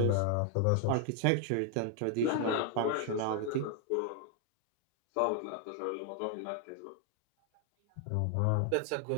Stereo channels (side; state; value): both; different; correlation 0.00